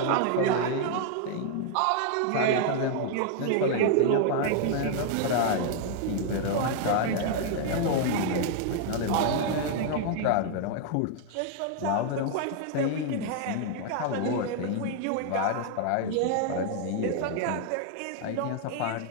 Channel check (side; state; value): both; different; correlation 0.00